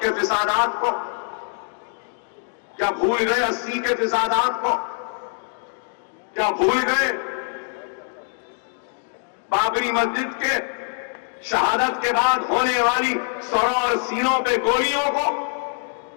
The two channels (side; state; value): right; silent; 63 dB below the other